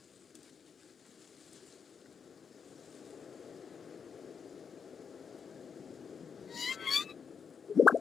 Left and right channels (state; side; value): quieter; right; 6.4 dB